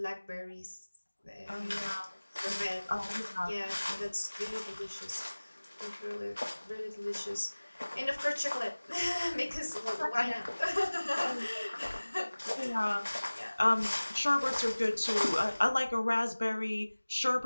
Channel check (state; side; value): inverted; both; correlation -1.00